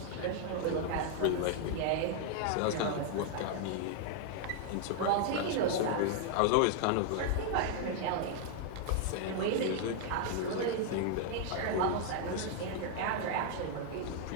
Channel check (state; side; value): different; both; correlation 0.00